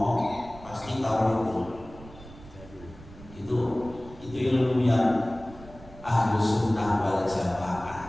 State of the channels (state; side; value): noise; right; rumble, 18 dB below the sound